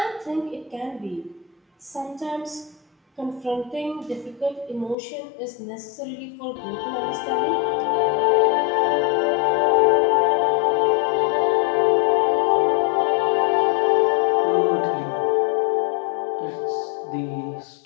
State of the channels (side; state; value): right; drops out; at 5.0 s